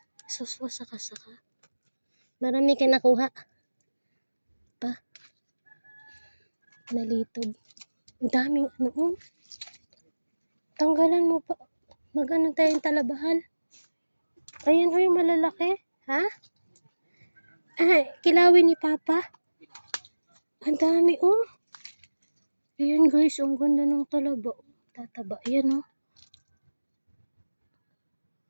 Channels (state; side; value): inverted; both; correlation -1.00